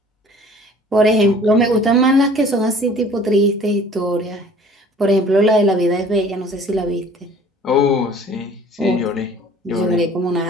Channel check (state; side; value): normal; both; correlation 0.50